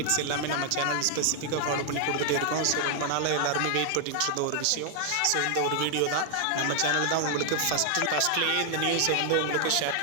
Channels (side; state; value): both; different; correlation 0.00